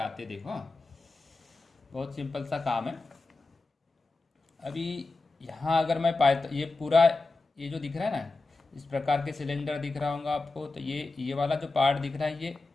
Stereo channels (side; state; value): right; quieter; 3.5 dB